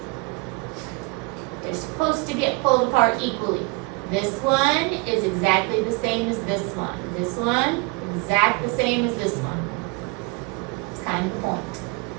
They're supposed to get pulled apart equally. This one is exactly the same as this one. This one, exact the same as this one. It's kind of the point.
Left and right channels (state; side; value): quieter; left; 28.4 dB